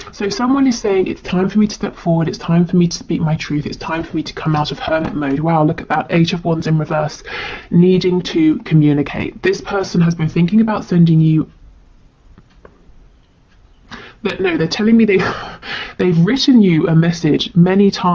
So someone is saying it's time for me to step forward, it's time for me to speak my truth, it's time for me to come out of Hermit mode. Wow, look at that, 8 of Wands in reverse, needing to communicate. This person has been thinking about sending you, but no, they're telling me they've written you a message many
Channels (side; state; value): both; identical; correlation 1.00